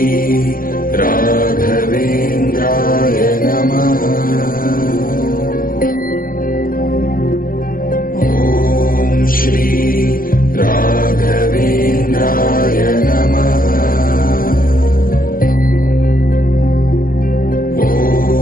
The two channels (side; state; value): right; late; 0.41 ms